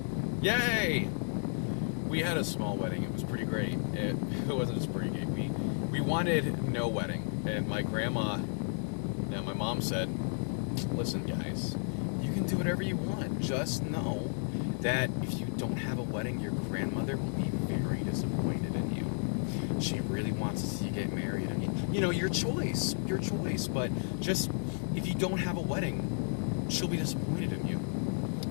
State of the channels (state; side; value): silent; right; 56 dB below the other